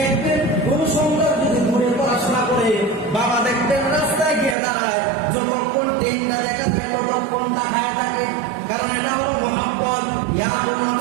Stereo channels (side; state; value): left; drops out; at 4.5 s